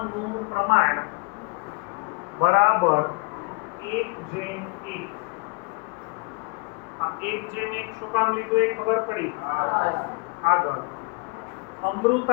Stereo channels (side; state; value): right; quieter; 29.2 dB